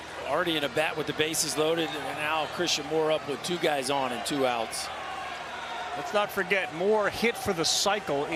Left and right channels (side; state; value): both; identical; correlation 1.00